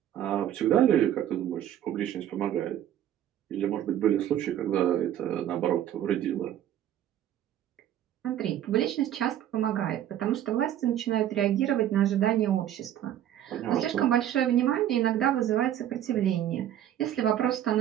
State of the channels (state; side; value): quieter; left; 11.3 dB